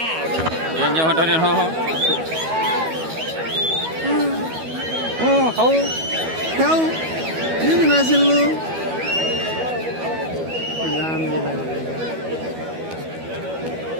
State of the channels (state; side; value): late; left; 12 ms